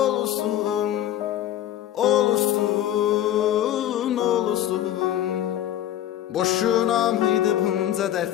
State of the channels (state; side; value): quieter; right; 12.0 dB